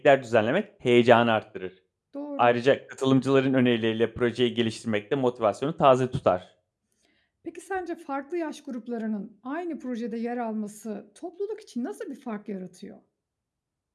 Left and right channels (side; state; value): both; identical; correlation 1.00